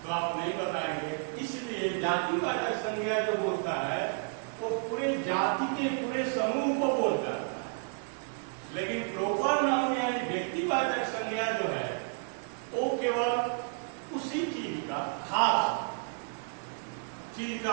तो आप नहीं बताएंगे। इसलिए जातिवाचक संज्ञा जो बोलता है वो पूरे जाति के पूरे समूह को बोलता है। लेकिन प्रॉपर नाउन यानी व्यक्तिवाचक संज्ञा जो है वो केवल उसी चीज का, खास चीज का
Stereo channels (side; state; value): left; silent; 57 dB below the other